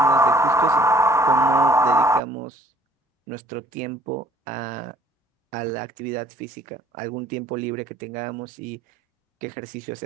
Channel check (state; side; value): normal; both; correlation 0.58